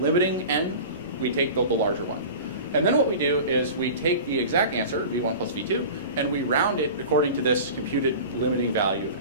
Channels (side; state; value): both; inverted; correlation -0.35